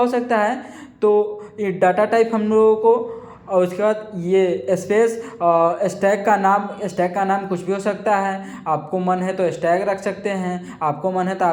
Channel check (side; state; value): both; identical; correlation 1.00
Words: सकता है। तो ये डाटा टाइप हम लोगों को, और उसके बाद ये स्पेस स्टैक का नाम कुछ भी हो सकता है। आपको मन है तो स्टैक रख सकते हैं, आपको मन है तो